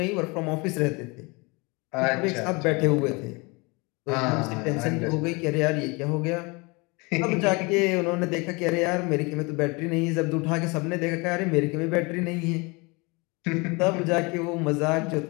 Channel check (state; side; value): quieter; right; 27.4 dB